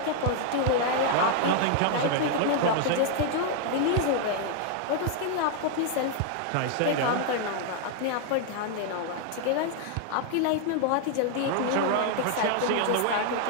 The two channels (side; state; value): both; different; correlation 0.00